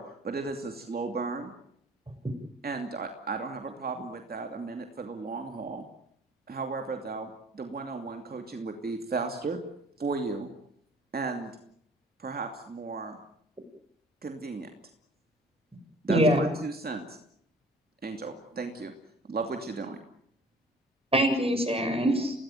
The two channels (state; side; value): normal; both; correlation 0.51